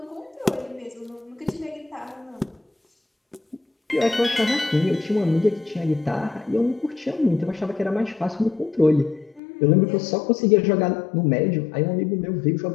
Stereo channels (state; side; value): drops out; right; at 9.4 s